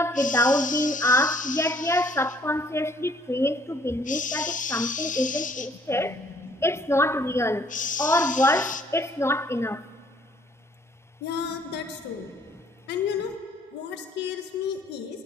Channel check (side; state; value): both; normal; correlation 0.61